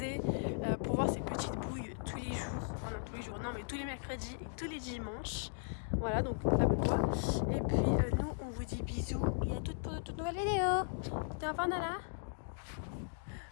pour voir ces petites bouilles tous les jours, enfin non tous les jours, non mais tous les mercredis et tous les dimanches. Voilà, donc abonne-toi. Et puis nous, on vous dit bisous et à toute nouvelle vidéo. C'était enfin Nala.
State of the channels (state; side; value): silent; right; digital silence